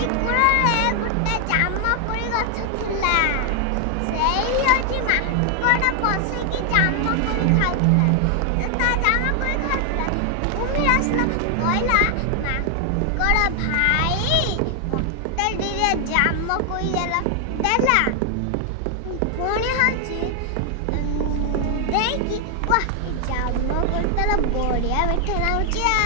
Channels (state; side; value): different; both; correlation 0.00